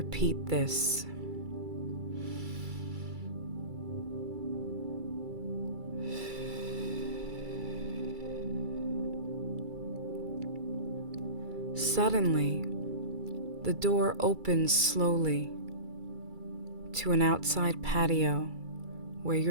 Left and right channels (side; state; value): left; late; 2.3 ms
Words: this. Suddenly, the door opens slowly to an outside patio where